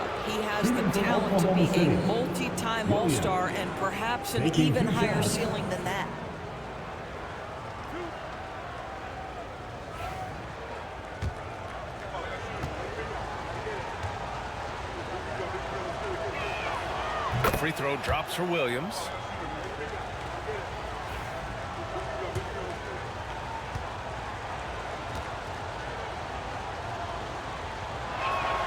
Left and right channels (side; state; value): both; identical; correlation 1.00